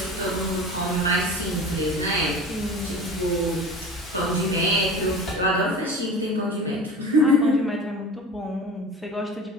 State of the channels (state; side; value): normal; both; correlation 0.36